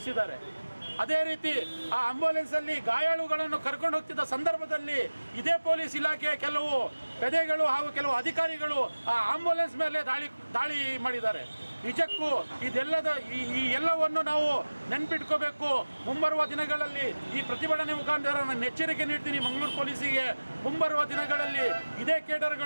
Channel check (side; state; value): both; inverted; correlation -1.00